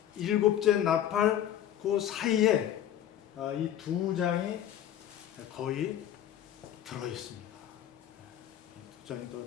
일곱째 나팔 그 사이에 이 두 장이 거의 들어있습니다. 두 장이 더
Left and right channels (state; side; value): quieter; right; 11.0 dB